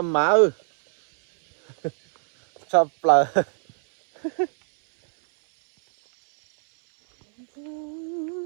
má chập lờ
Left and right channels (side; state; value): left; silent; 64 dB below the other